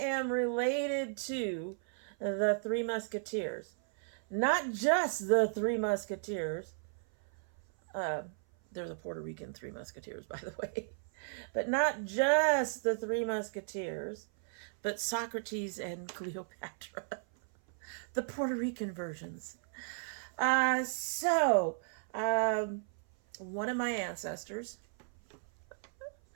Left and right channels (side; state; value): left; silent; 54 dB below the other